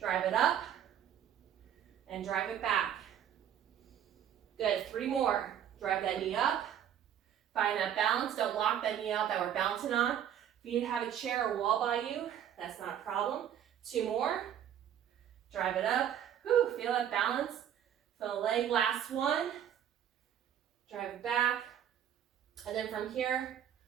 it up, and drive it back. Good, 3 more. Drive that knee up, find that balance. Don't lock that knee out that we're bouncing on. If you need to have a chair or wall by you, that's not a problem. 2 more. Drive it up. Whew, feel that balance. Feel the leg, last one. Drive it back. And then from here,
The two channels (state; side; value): quieter; left; 9.9 dB